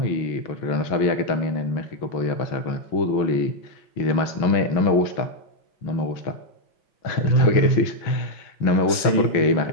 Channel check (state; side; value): late; right; 5.9 ms